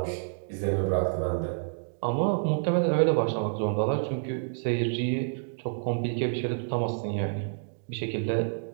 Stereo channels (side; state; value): left; silent; digital silence